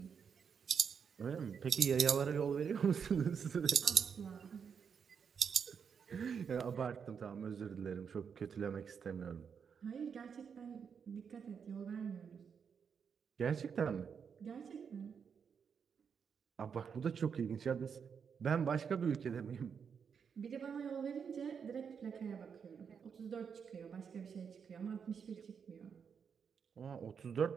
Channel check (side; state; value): left; quieter; 6.7 dB